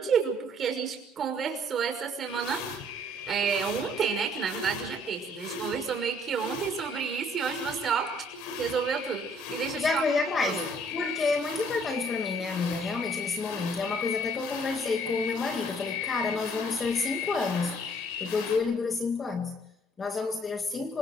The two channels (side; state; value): both; normal; correlation 0.61